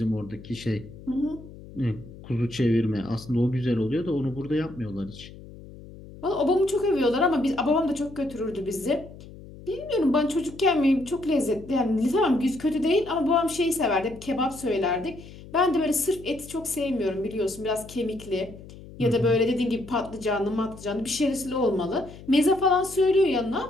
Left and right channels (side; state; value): left; noise; hum, 17 dB below the sound